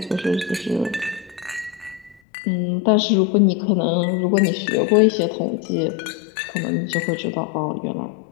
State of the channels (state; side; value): drops out; right; at 2.2 s